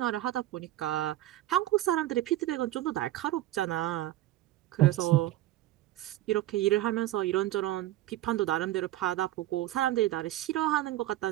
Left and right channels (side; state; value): left; quieter; 15.1 dB